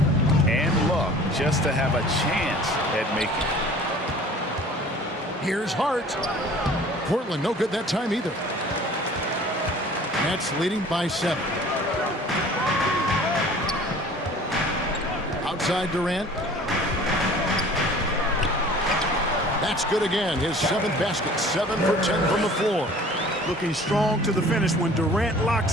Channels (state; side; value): normal; both; correlation 0.48